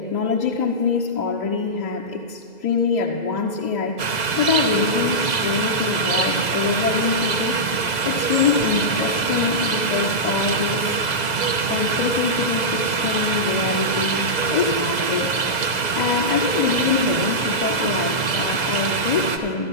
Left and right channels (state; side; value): late; right; 2.0 ms